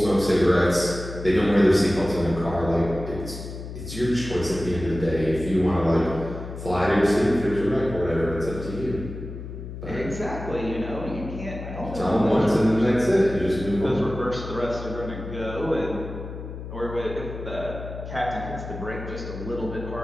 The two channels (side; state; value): left; noise; hum, 9 dB below the sound